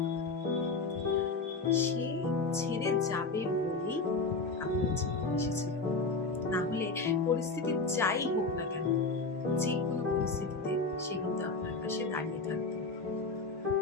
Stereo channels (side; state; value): right; quieter; 3.8 dB